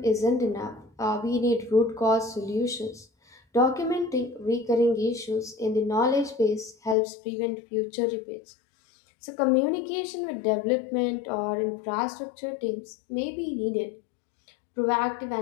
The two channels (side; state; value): right; drops out; at 7.0 s